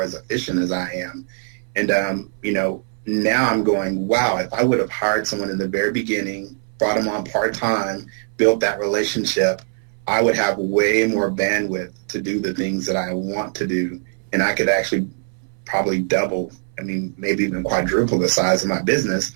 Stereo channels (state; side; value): silent; left; 63 dB below the other